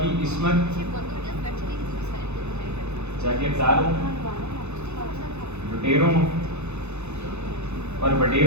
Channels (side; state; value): left; late; 0.81 ms